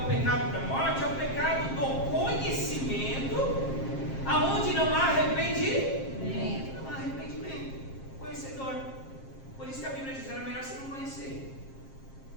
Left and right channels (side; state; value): right; late; 7.5 ms